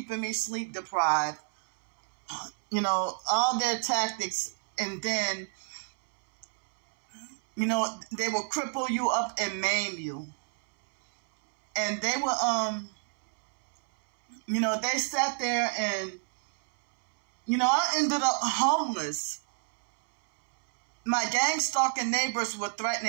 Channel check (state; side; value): silent; left; 59 dB below the other